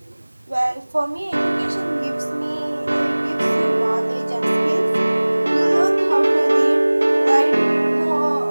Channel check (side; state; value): both; inverted; correlation -1.00